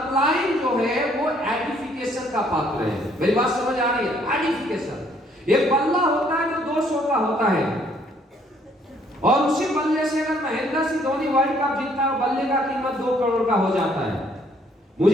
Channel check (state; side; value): normal; both; correlation 0.65